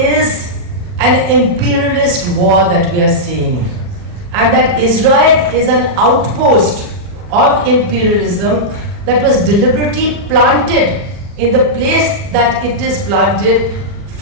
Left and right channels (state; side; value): late; left; 40 ms